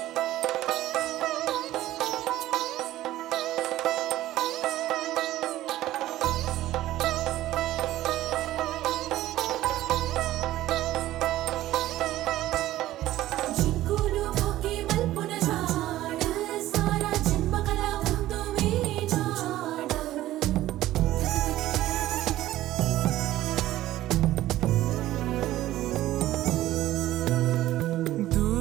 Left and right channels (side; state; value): left; quieter; 14.8 dB